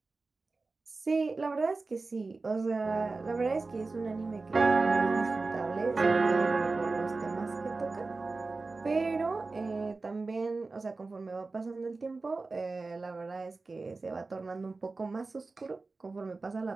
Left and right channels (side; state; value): left; quieter; 3.7 dB